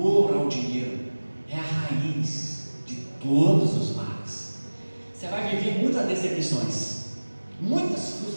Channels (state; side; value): inverted; both; correlation -1.00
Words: ao dinheiro é a raiz de todos os males. Você vai viver muitas decepções, muitas